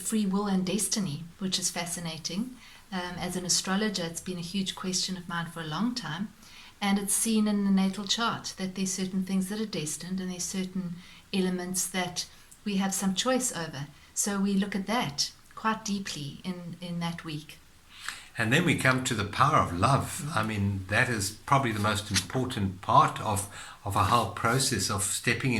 will and destiny, which is fascinating. As an astrologer, it's been a huge question of mine for a long time, and it's seen in the natal chart that there's certain things that are destined, and there's certain elements that we have some choice over. So we look at that quite deeply in that week. And then we come to the power of love. I mean, that is probably the most important part of a whole process of stepping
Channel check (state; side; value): identical; both; correlation 1.00